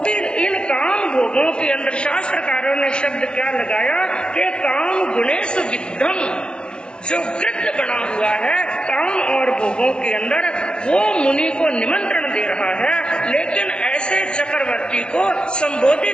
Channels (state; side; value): late; right; 0.050 ms